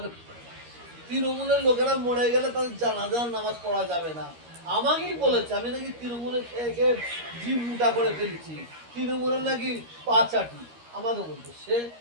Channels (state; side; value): late; left; 13 ms